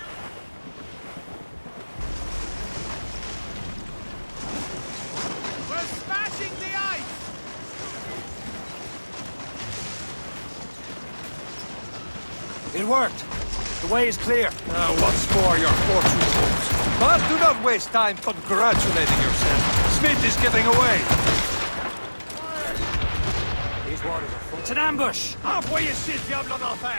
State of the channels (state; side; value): inverted; both; correlation -1.00